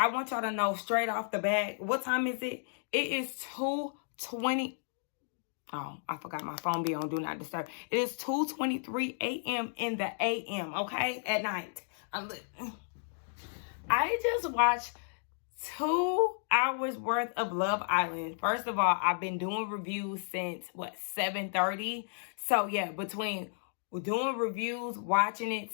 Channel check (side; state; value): right; silent; digital silence